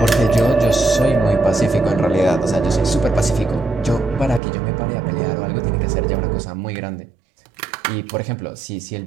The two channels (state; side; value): drops out; left; at 4.4 s